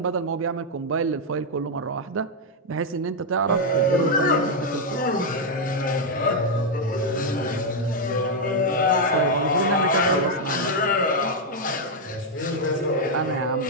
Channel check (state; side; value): normal; both; correlation 0.00